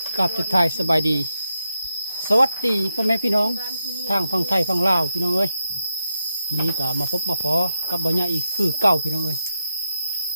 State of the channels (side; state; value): both; inverted; correlation -0.84